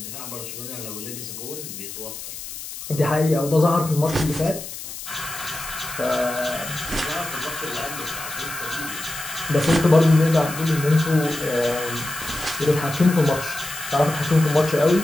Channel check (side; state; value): left; noise; hiss, 10 dB below the sound